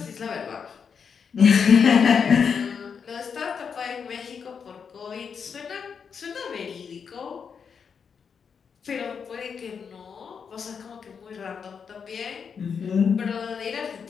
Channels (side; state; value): right; quieter; 6.4 dB